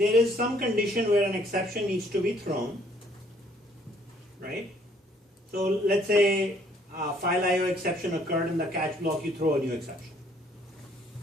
is some condition where an exception needs to be thrown, right? So let's say file IO exception occurred in the catch block, you throw a new exception.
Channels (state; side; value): normal; both; correlation 0.63